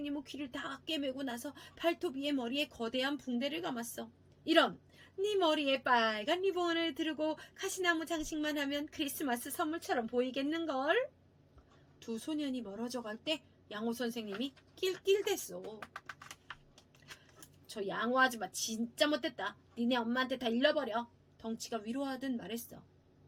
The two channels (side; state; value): both; identical; correlation 1.00